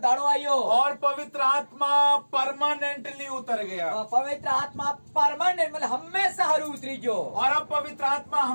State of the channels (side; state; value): both; inverted; correlation -1.00